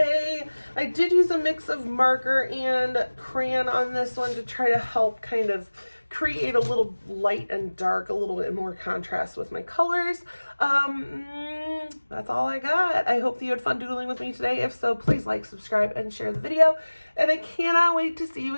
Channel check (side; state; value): both; inverted; correlation -1.00